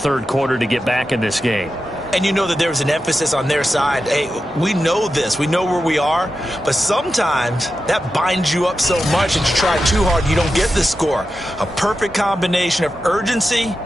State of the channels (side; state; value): both; normal; correlation 0.91